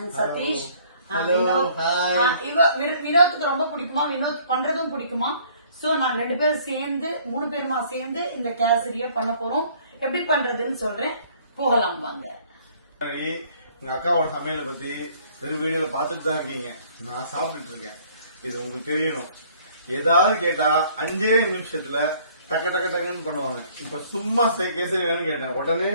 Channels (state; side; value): inverted; both; correlation -0.58